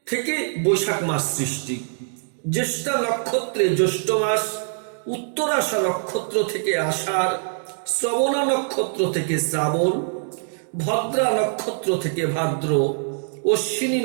থেকে বৈশাখ মাস সৃষ্টি, জ্যেষ্ঠা নক্ষত্রে জ্যৈষ্ঠ মাস, উত্তরাষা নক্ষত্র থেকে আষাঢ়, শ্রবণা নক্ষত্র থেকে শ্রাবণ, ভদ্রা নক্ষত্র থেকে ভাদ্র, অশ্বিনী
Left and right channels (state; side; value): silent; left; digital silence